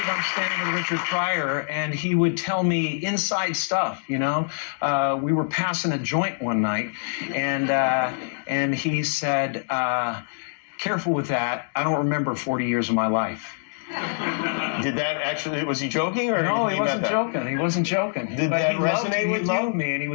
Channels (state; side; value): silent; right; digital silence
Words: I'm standing with Richard Pryor, and he would tell me inside stuff, you know. We were passing a joint one night, and he said, careful with that. I don't remember 40 years of my life. Did that actually, was he joking? Or No, he wasn't joking. He wasn't joking. Did that resonate with you? He loved me, and he